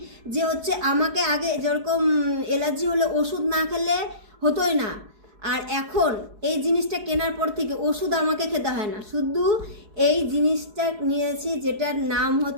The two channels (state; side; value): late; left; 4.7 ms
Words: যে হচ্ছে আমাকে আগে যেরকম অ্যালার্জি হলে ওষুধ না খেলে হতোই না, আর এখন এই জিনিসটা কেনার পর থেকে ওষুধ আমাকে খেতে হয় না, শুধু এই জিনিসটা নিয়েছি যেটার নাম